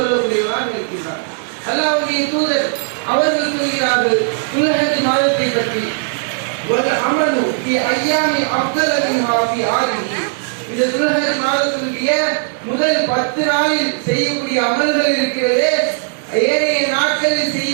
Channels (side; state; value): left; silent; digital silence